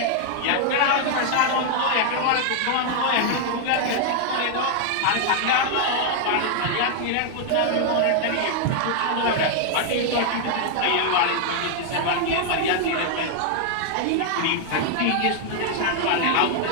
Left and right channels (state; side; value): different; both; correlation 0.00